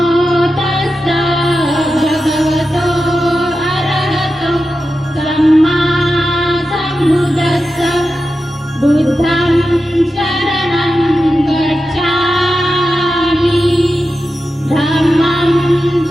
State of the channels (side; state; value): both; normal; correlation 0.91